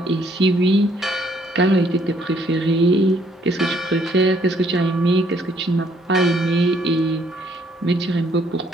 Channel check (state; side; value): normal; both; correlation 0.66